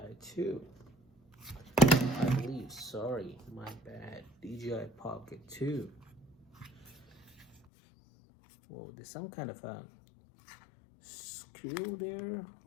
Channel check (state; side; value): drops out; right; at 7.6 s